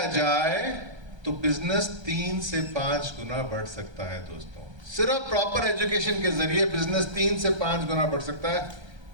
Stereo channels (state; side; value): late; left; 1.3 ms